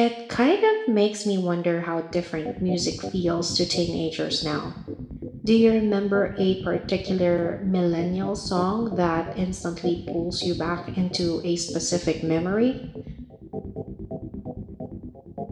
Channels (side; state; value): both; identical; correlation 1.00